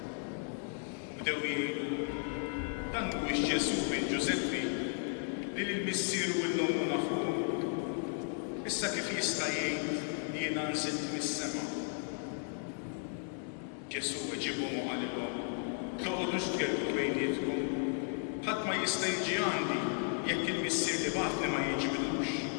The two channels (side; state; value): right; silent; 55 dB below the other